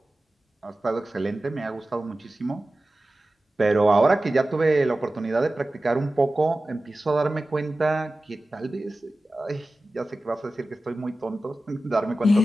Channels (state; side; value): normal; both; correlation 0.96